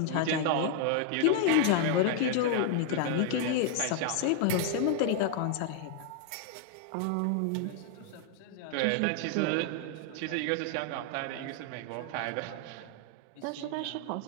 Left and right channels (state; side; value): different; both; correlation 0.00